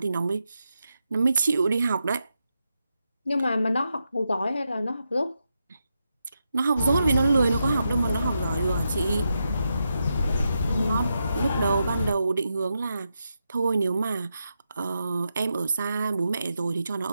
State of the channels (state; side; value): inverted; both; correlation -0.85